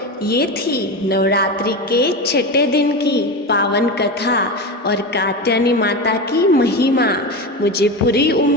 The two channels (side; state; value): both; normal; correlation 0.21